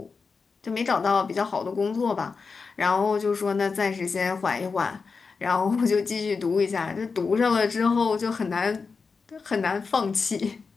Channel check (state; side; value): quieter; right; 4.9 dB